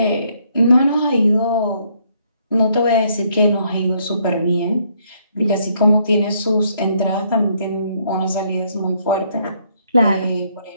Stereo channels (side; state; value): both; inverted; correlation -0.69